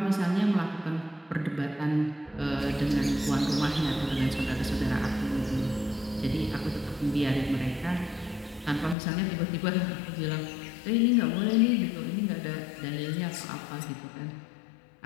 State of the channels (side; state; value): right; drops out; at 9.0 s